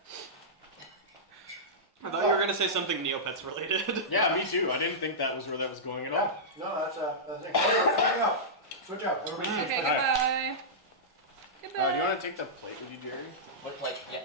I thought you were gonna say something Neopets related. Yeah, me too. I didn't think that was where that was going at Yeah. all. No, that's the thing. Switch out. Switch out. Everybody switch Okay, back. goodbye. Goodbye. Do you want to take the plate with you, Jerry? Look like, yeah,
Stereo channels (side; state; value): both; normal; correlation -0.13